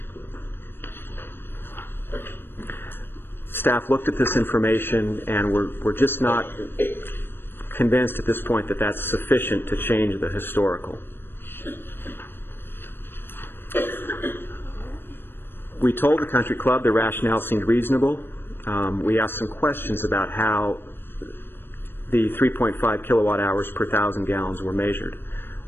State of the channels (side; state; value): right; late; 0.10 ms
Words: Staff looked at this information, and we're just not convinced at this point that that's sufficient to change the historical. We told the country club the rationale seemed reasonable. We asked some questions about how the 3.5 kilowatt hours per 1,000 gallons were measured.